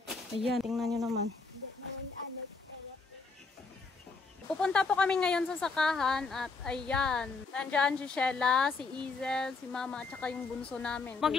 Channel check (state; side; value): quieter; right; 4.3 dB